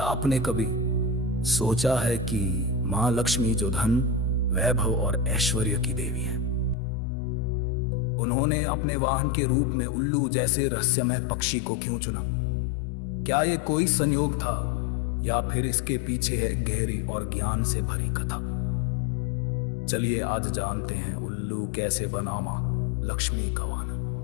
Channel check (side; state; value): right; drops out; at 6.8 s